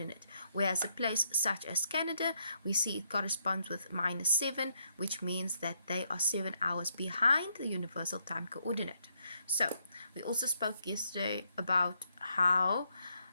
Whereas a place such as Canada, we see it corresponds with -7, which means that they are 7 hours behind the universal time coordinate. So we also spoke yesterday about how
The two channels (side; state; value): both; inverted; correlation -0.76